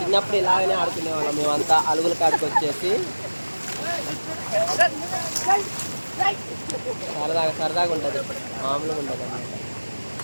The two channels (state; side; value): inverted; both; correlation -1.00